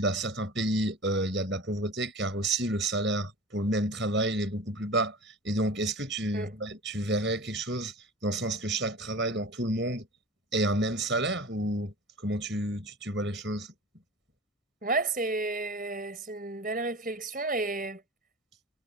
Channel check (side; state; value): both; normal; correlation 0.36